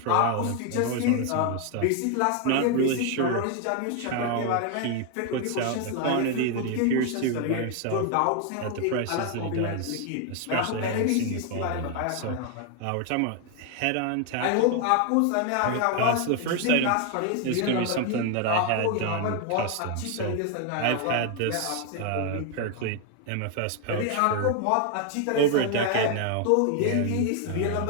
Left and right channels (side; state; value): both; different; correlation 0.01